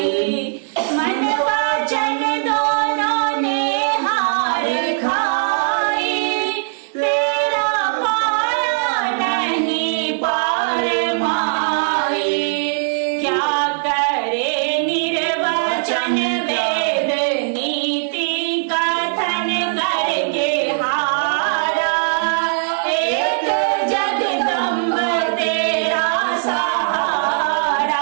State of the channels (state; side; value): silent; left; 66 dB below the other